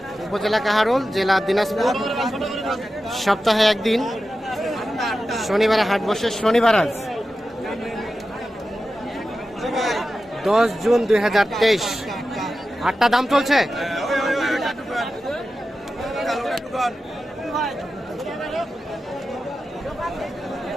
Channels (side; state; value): both; normal; correlation 0.92